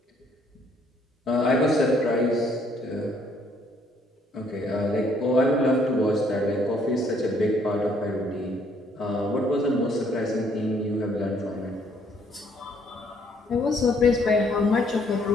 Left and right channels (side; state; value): both; normal; correlation 0.66